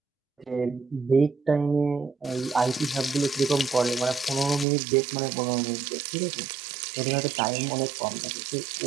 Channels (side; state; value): left; drops out; at 4.7 s